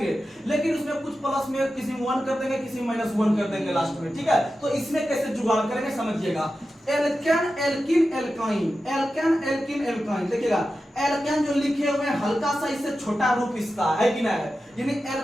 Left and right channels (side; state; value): both; normal; correlation 0.92